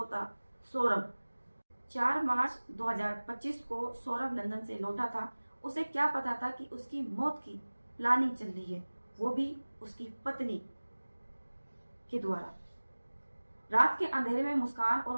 था सौरभ। 4 मार्च 2025 को सौरभ लंदन से लौटा था। उसे क्या पता था कि उसकी मौत की प्लानिंग चल रही है, वो भी उसकी पत्नी के द्वारा। रात के अंधेरे में मुस्कान और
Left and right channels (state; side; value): inverted; both; correlation -1.00